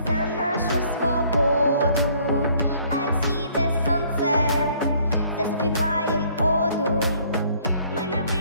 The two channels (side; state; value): both; inverted; correlation -0.61